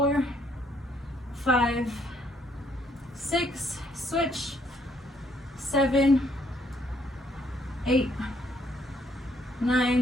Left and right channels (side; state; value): both; normal; correlation 0.69